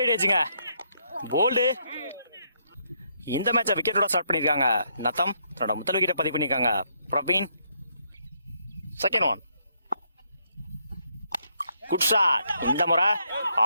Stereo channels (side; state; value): both; inverted; correlation -0.74